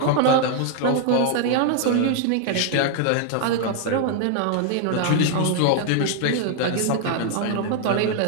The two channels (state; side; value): different; both; correlation 0.00